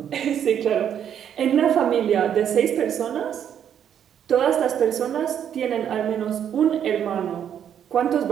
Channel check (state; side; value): quieter; left; 9.2 dB